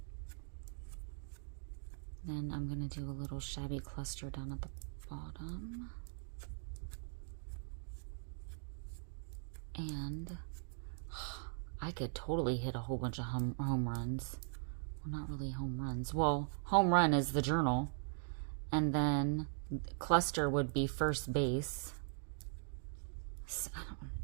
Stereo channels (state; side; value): silent; left; digital silence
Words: Then I'm going to do a little shabby cluster down at the bottom. And I could totally hit a whole bunch of home runs. Well, not really home runs. Well, home run is the journal. And then cluster would be first base. So